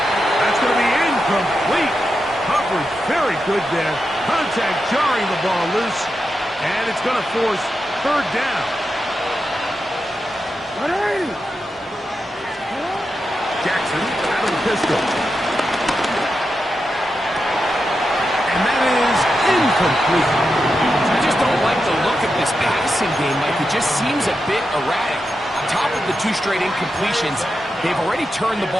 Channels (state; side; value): normal; both; correlation 0.88